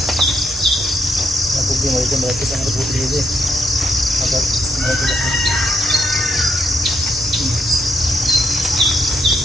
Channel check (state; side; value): normal; both; correlation 0.75